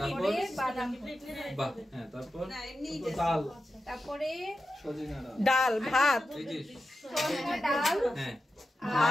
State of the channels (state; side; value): normal; both; correlation 0.91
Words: বাদাম। বাহ, হ্যাঁ, তারপর না এমনি ডাল, তারপরে ডাল, ভাত। এই যে সজনা ডাল, হ্যাঁ,